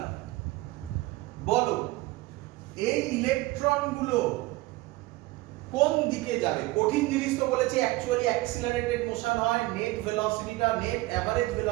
বলো এই ইলেকট্রন গুলো কোন দিকে যাবে? কঠিন জিনিস তো বলেছি, অ্যাকচুয়ালি অ্যাক্সিলারেটেড মোশন হয়, নেট ভেলোসিটিটা, নেট এভারেজ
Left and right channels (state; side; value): quieter; left; 20.1 dB